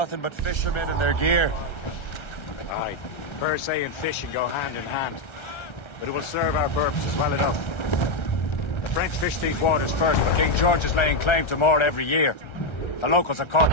but fishermen and their gear. Aye. Per se and fishing go hand in hand. But it will serve our purposes well enough. The French fish these waters first, but King George is laying claim to more every year. The locals are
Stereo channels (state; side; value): late; right; 1.3 ms